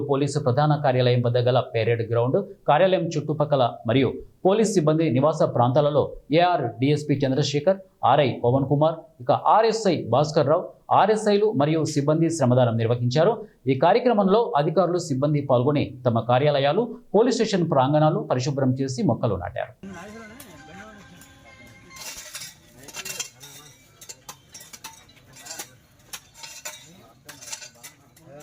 పోలీసు ప్రధాన కార్యాలయం వద్ద గల పెరేడ్ గ్రౌండ్, కార్యాలయం చుట్టుపక్కల మరియు పోలీస్ సిబ్బంది నివాస ప్రాంతాలలో AR DSP Chandrashekar, RI Pavan Kumar, ఇక ఆర్ఎస్ఐ భాస్కర్ రావు, ఆర్ఎస్ఐలు మరియు సిబ్బంది శ్రమదానం నిర్వహించారు. ఈ కార్యక్రమంలో అధికారులు, సిబ్బంది పాల్గొని తమ కార్యాలయాలు, పోలీస్ స్టేషన్ ప్రాంగణాలు పరిశుభ్రం చేసి మొక్కలు నాటారు.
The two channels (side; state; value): both; identical; correlation 1.00